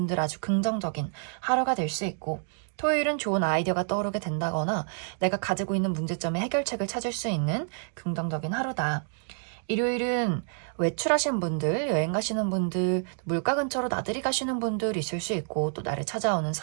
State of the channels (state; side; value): silent; left; 59 dB below the other